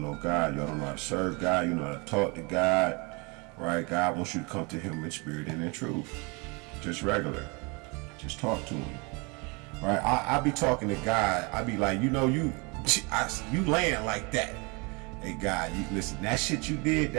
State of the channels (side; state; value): left; quieter; 29.7 dB